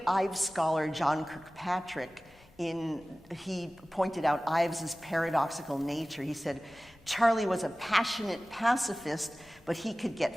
Ives scholar John Kirkpatrick, he pointed out Ives's paradoxical nature. He said, Charlie was a passionate pacifist, but he could get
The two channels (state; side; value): noise; left; rumble, 28 dB below the sound